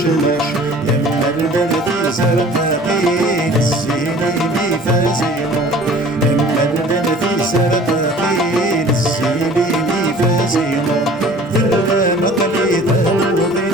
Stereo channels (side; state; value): both; normal; correlation 0.48